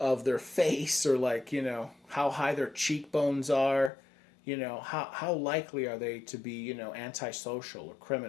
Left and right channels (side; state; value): right; drops out; at 3.9 s